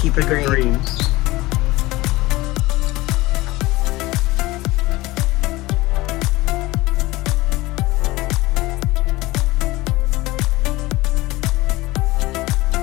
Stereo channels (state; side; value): quieter; right; 19.7 dB